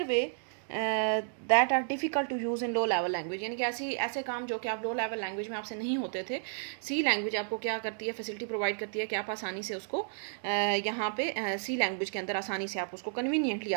way that are difficult to use in low level language. यानी कि ऐसे काम जो कि आप लो लेवल लैंग्वेज में आपसे नहीं होते थे, सी लैंग्वेज आपको क्या करती है, फैसिलिटी प्रोवाइड करती है कि आप आसानी से उसको यहाँ पे सी लैंग्वेज के अंदर आसानी से आप उसको कन्वीनियंटली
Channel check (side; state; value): left; silent; digital silence